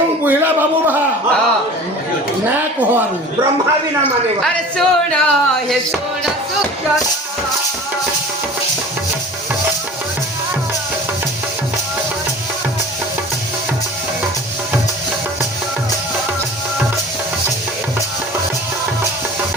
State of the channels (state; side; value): normal; both; correlation 0.40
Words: ବୁହିଲା ବାବୁ ବାହା ନା କହ ଆରୁ ब्रह्मा भी ना माने अरे सोना हे सोना सुखना